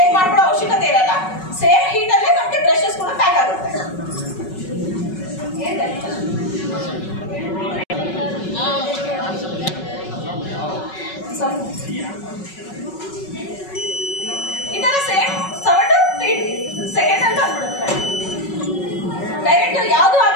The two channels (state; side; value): late; right; 5.4 ms